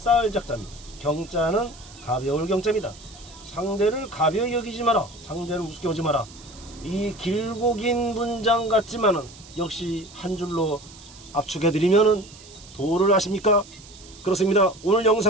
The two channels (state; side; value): noise; right; hiss, 20 dB below the sound